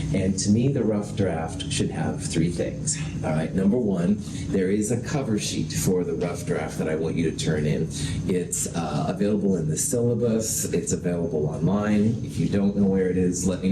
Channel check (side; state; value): both; identical; correlation 1.00